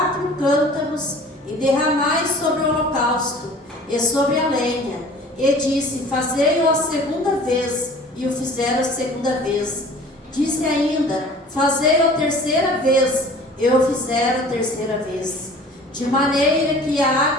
cântaros e derramai sobre o holocausto e sobre a lenha. E disse: Fazei-o a segunda vez. E o fizeram a segunda vez. Disse ainda: Fazei-o a terceira vez. E o fizeram a terceira vez. De maneira que a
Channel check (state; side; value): normal; both; correlation 0.46